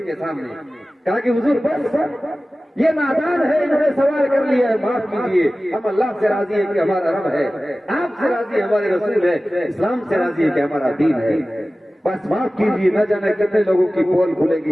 کے سامنے، کہا کہ حضور بس یہ نادان ہے، انہوں نے سوال کر لیا ہے، معاف کیجیے، ہم اللہ سے راضی ہیں کہ ہمارا رب ہے، آپ سے راضی ہے ہمارے رسول ہے، اسلام سے راضی ہے کہ ہمارا دین ہے، بس معاف کیجیے، نہ جانے کتنے لوگوں کی پول کھلے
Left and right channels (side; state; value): both; normal; correlation 0.96